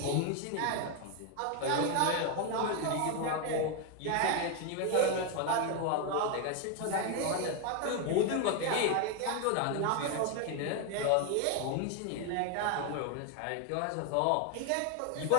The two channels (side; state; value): both; different; correlation 0.01